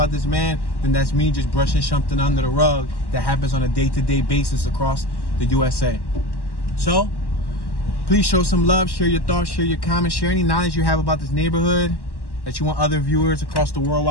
this man, then that's me just brushing something under the rug that happens on a day-to-day basis across the USA. So, please show some love, share your thoughts, share your comments, share any knowledge you have about this neighborhood that you want other viewers across the World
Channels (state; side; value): late; right; 1.1 ms